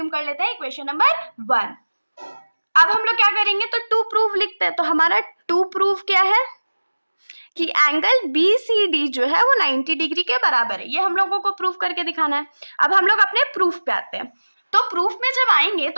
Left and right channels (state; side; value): inverted; both; correlation -1.00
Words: कर लेते हैं इक्वेशन नंबर 1। अब हम लोग क्या करेंगे, तो टू प्रूफ लिखते हैं। तो हमारा टू प्रूफ क्या है कि एंगल BCD जो है वो 90 डिग्री के बराबर है। ये हम लोगों को प्रूफ करके दिखाना है। अब हम लोग अपने प्रूफ पे आते हैं। तो प्रूफ में जब आएंगे